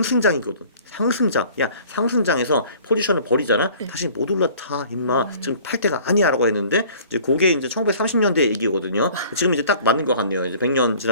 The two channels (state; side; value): inverted; both; correlation -0.50